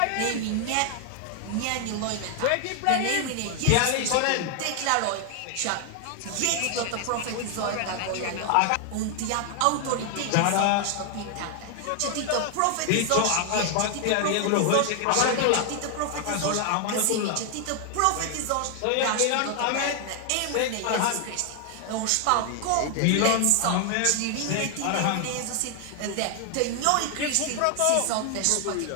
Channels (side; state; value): both; different; correlation 0.00